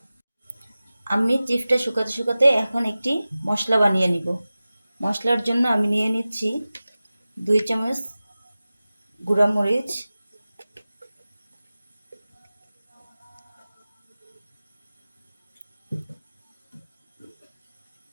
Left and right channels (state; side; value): inverted; both; correlation -0.96